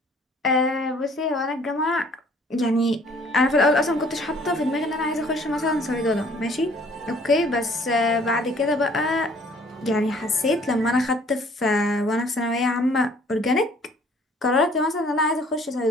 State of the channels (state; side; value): normal; both; correlation 0.57